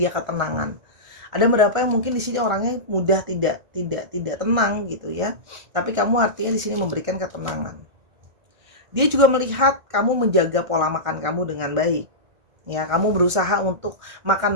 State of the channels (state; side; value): late; left; 1.9 ms